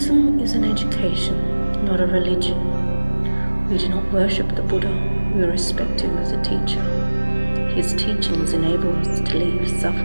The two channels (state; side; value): inverted; both; correlation -1.00